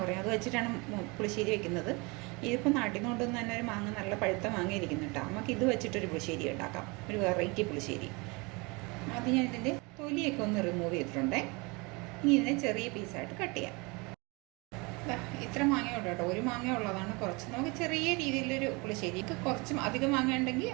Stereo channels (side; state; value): left; quieter; 27.5 dB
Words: പറയും, അത് വെച്ചിട്ടാണ് പുളിശ്ശേരി വെക്കുന്നത്. ഇതിപ്പോൾ നാട്ടിൽ നിന്ന് കൊണ്ടുവന്ന് തന്നെ ഒരു മാങ്ങ നല്ല പഴുത്ത മാങ്ങ ഇരിക്കുന്നുണ്ട്. നമുക്ക് ഇത് വെച്ചിട്ടൊരു പുളിശ്ശേരി ഉണ്ടാക്കാം, ഒരു വെറൈറ്റി പുളിശ്ശേരി. ആദ്യം ഞാൻ ഇതിൻ്റെ തൊലിയൊക്കെ ഒന്ന് റിമൂവ് ചെയ്തിട്ടുണ്ടേ. ഇനി ഇതിനെ ചെറിയ പീസായിട്ട് കട്ട് ചെയ്യാം. ഇത്ര മാങ്ങയുള്ളൂ കേട്ടോ, ഒരു മാങ്ങ ഉള്ളതാണ്. കുറച്ച് നമുക്ക് ചെറിയ രീതിയിലൊരു പുളിശ്ശേരിക്ക് കുറച്ച് അധികം മാങ്ങ ഉണ്ടെങ്കിൽ